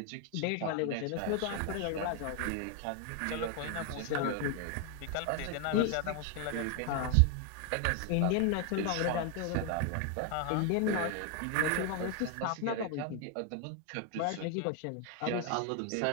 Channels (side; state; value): both; different; correlation 0.01